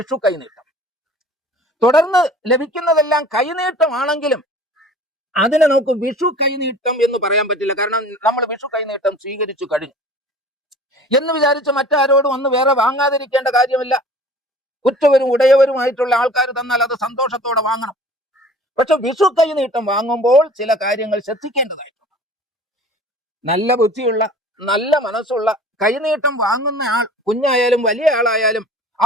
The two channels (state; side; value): normal; both; correlation 0.46